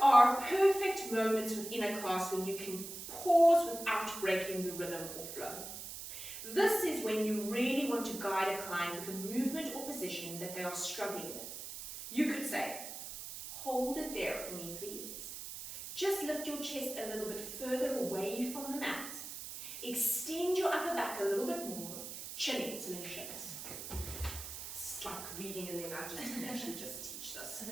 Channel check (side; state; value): right; noise; hiss, 9 dB below the sound